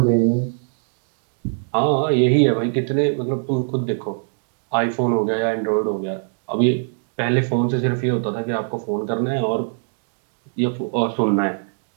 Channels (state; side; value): silent; left; digital silence